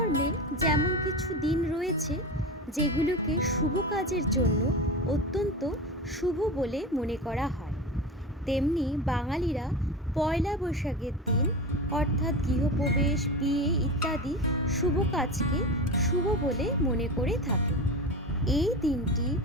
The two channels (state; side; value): normal; both; correlation 0.25